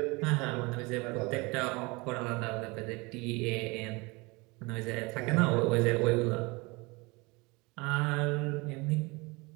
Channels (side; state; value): left; quieter; 25.7 dB